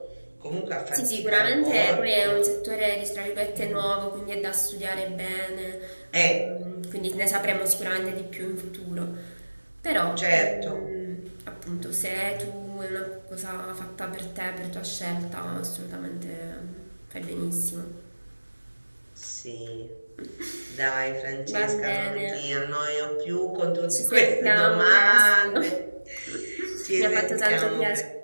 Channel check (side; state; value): both; inverted; correlation -1.00